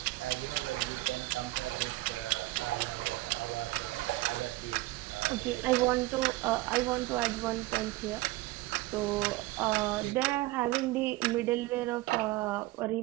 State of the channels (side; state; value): left; quieter; 19.7 dB